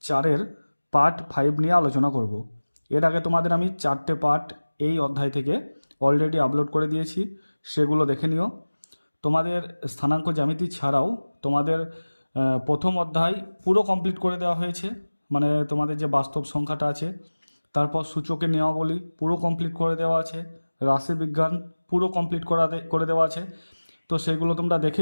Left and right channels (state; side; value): inverted; both; correlation -1.00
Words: 4-এর পার্ট 5 নিয়ে আলোচনা করব। এর আগে তোমাদের আমি 4টে পার্ট এই অধ্যায় থেকে অলরেডি আপলোড করে দিয়েছি, সেগুলো দেখে নিও। তোমাদের স্থানাঙ্ক জ্যামিতি ছাড়াও তোমাদের প্রথম অধ্যায় পুরো কমপ্লিট করে দেওয়া হয়েছে, মানে তোমাদের যে বাস্তব সংখ্যাটা আছে, তারপর সূচকের নিয়মাবলী পুরো কমপ্লিট করে দেওয়া আছে, রাশিবিজ্ঞান পুরো কমপ্লিট করে দেওয়া আছে। তো সেগুলো তোমরা দেখে